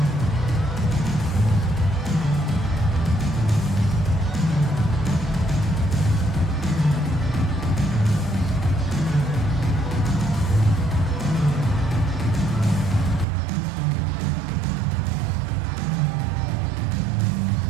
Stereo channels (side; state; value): left; drops out; at 13.2 s